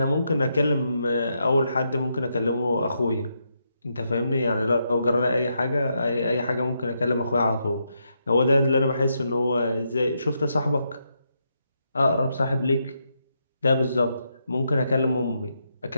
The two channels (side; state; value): both; inverted; correlation -0.81